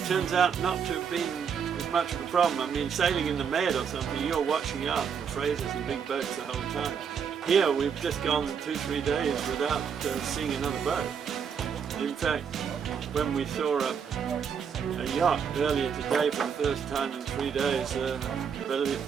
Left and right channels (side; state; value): left; quieter; 7.0 dB